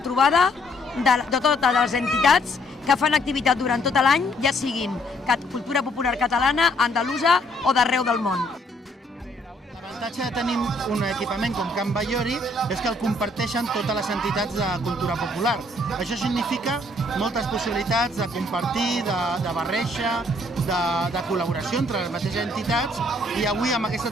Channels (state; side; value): normal; both; correlation 0.66